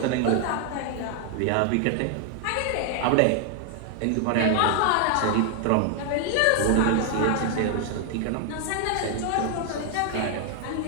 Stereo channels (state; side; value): different; both; correlation 0.00